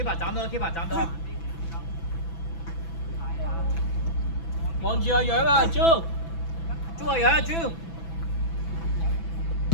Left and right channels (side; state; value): right; late; 6.0 ms